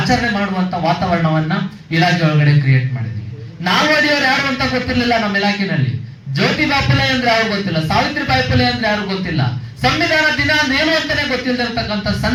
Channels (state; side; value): identical; both; correlation 1.00